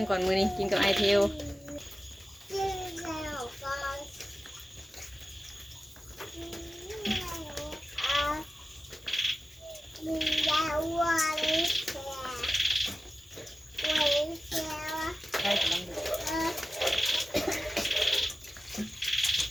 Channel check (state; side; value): normal; both; correlation 0.95